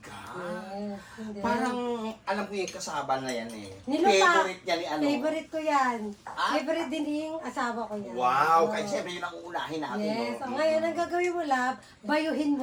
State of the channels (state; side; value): identical; both; correlation 1.00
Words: Yes. And then, Parang alam ko yung kasaba na yan eh. nilupak. Favorite niya ni ano. Favorite ko yan. Ah? Favorite din yung asawa ko yan. Wow, Oo. kahit siyempre yun ang uunahin natin. Yes. no? So, ngayon, ang gagawin mo, lab, bayuhin